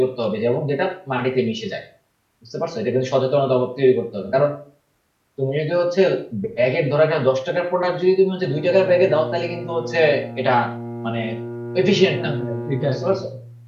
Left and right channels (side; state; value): both; identical; correlation 1.00